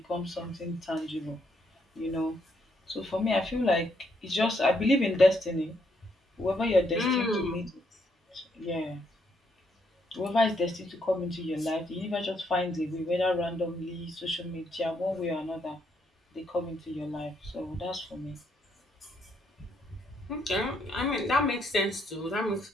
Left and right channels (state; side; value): normal; both; correlation 0.74